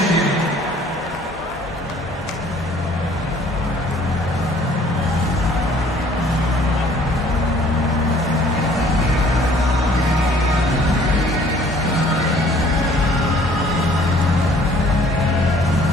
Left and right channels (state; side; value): normal; both; correlation 0.56